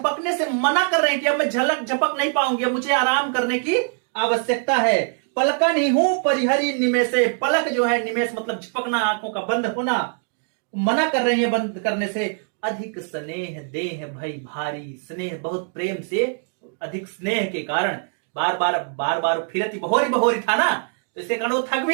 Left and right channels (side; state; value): left; silent; 58 dB below the other